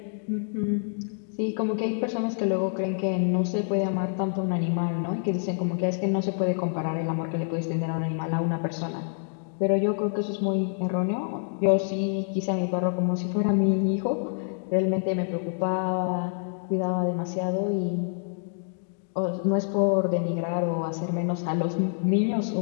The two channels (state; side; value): silent; right; digital silence